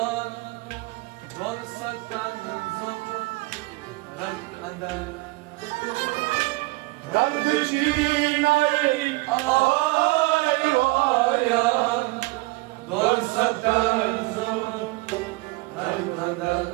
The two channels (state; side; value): quieter; left; 22.8 dB